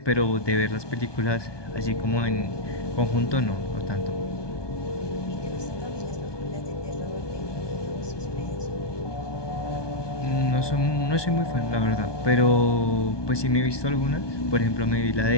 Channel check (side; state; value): right; late; 1.2 ms